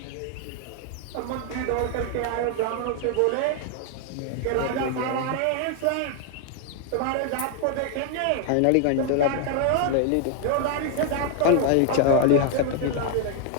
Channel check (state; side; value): different; both; correlation 0.00